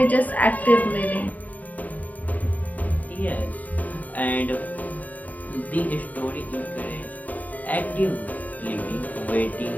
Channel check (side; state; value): right; late; 0.076 ms